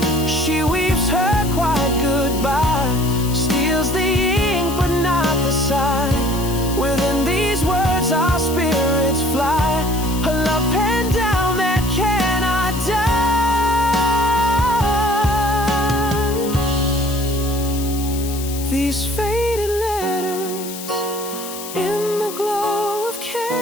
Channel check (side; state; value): left; noise; hiss, 11 dB below the sound